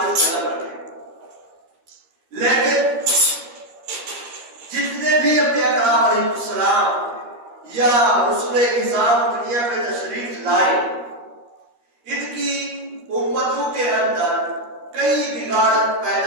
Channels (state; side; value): late; left; 13 ms